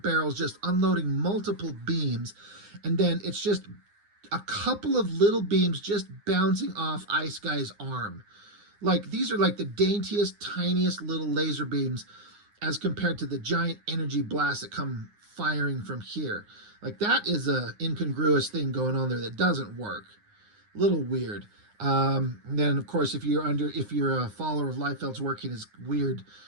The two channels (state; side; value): late; left; 9.7 ms